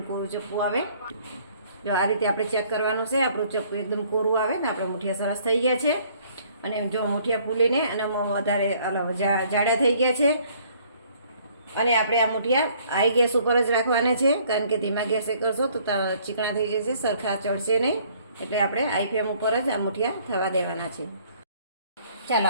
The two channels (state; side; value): inverted; both; correlation -0.60